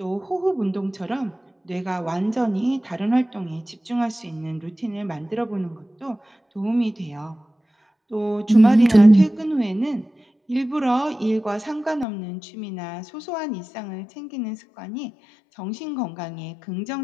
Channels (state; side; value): drops out; right; at 12.1 s